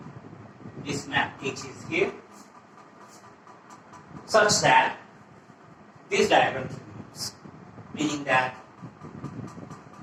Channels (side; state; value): both; identical; correlation 1.00